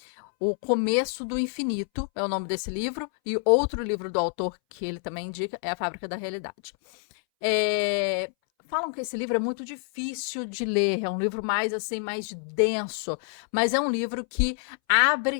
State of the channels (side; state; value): right; silent; 60 dB below the other